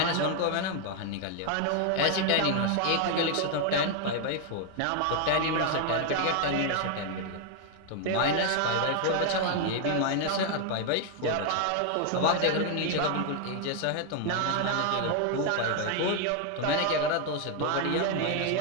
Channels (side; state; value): both; different; correlation 0.00